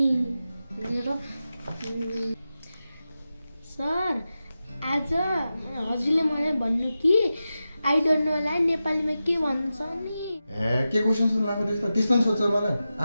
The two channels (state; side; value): inverted; both; correlation -0.92